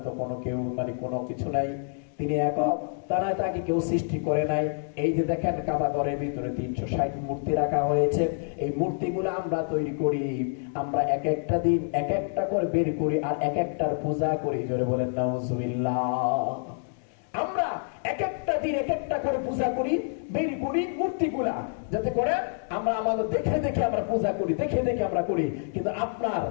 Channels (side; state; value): right; silent; digital silence